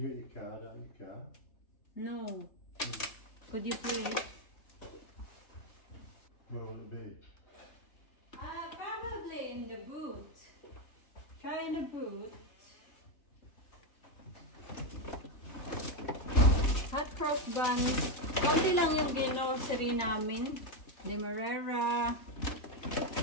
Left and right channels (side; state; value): right; late; 3.3 ms